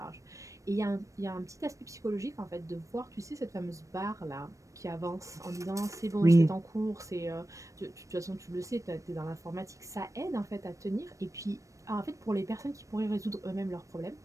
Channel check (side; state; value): left; late; 0.16 ms